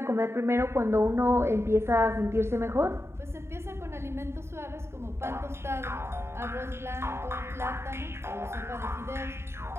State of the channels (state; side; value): late; left; 0.12 ms